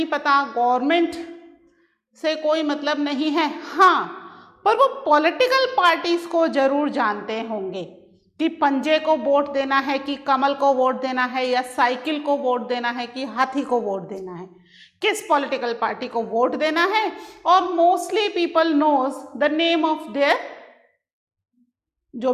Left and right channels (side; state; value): both; identical; correlation 1.00